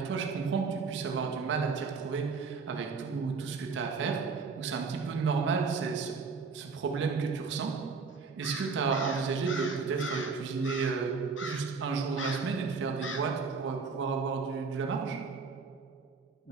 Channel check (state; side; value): quieter; left; 4.8 dB